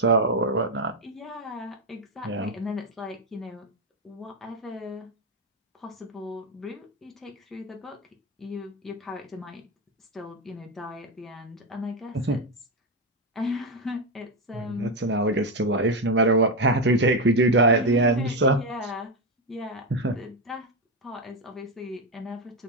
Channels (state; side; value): normal; both; correlation 0.08